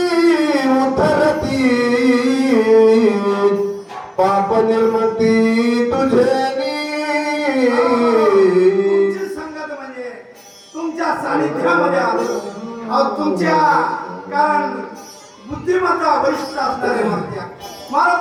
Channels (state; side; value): identical; both; correlation 1.00